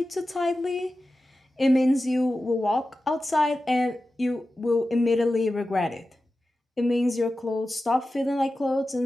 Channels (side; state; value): both; normal; correlation 0.94